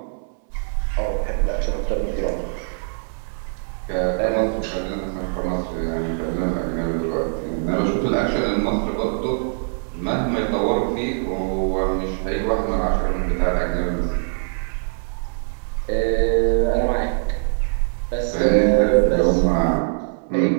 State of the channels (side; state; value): left; silent; digital silence